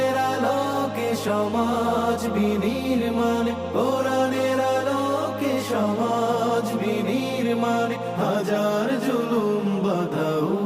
আলোকে সমাজ বিনির্মাণ, কোরআনের আলোকে সমাজ বিনির্মাণ, হাজার জুলুম বাধা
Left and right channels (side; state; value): both; identical; correlation 1.00